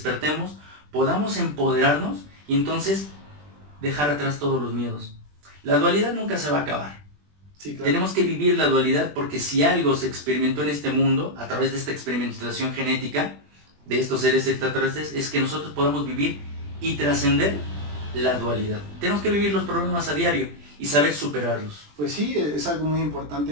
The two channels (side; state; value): left; late; 20 ms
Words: podamos empoderarnos y entonces dejar atrás todos los miedos. La dualidad nunca se va a acabar. Sí, claro. Tenemos que vivir la dualidad, porque si algo se experimentó en este mundo a través de esta experimentación genética de estos seres extraterrestres, es que nosotros podamos vivir y trascender la dualidad. Tenemos que vivir los problemas a diario y saber superarlos. Pues sí, es algo muy importante,